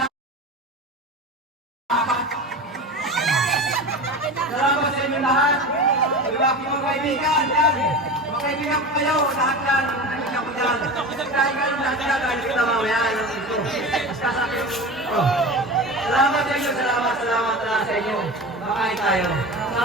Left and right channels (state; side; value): normal; both; correlation 0.30